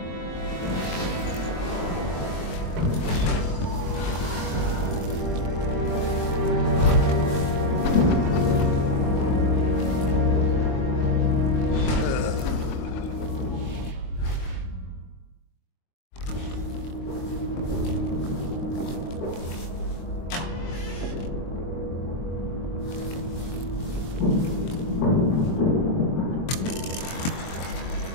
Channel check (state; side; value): late; right; 23 ms